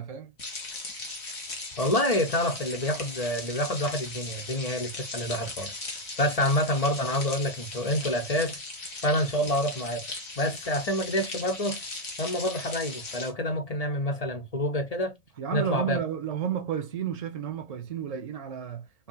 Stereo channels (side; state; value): right; late; 1.8 ms